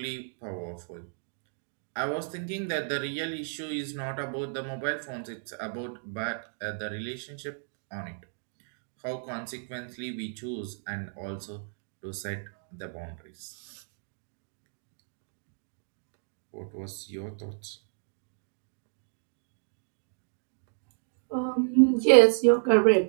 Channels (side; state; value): left; silent; digital silence